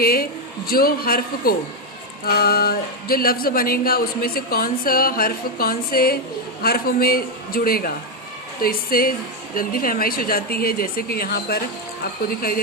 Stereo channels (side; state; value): both; normal; correlation 0.04